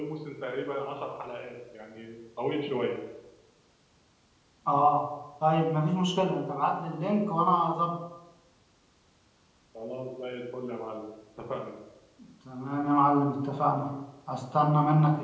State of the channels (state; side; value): identical; both; correlation 1.00